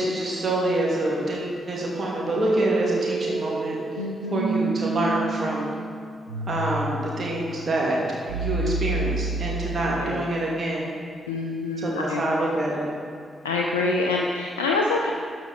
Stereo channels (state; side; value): normal; both; correlation 0.66